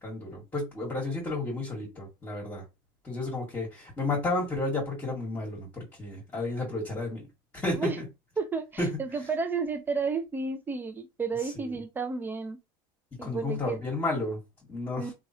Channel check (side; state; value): both; normal; correlation 0.50